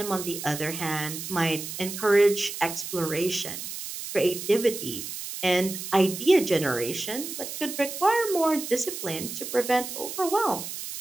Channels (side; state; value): right; noise; hiss, 8 dB below the sound